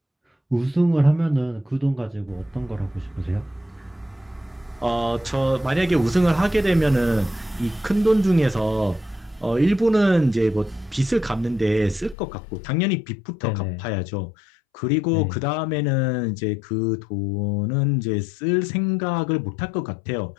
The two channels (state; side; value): drops out; right; at 12.2 s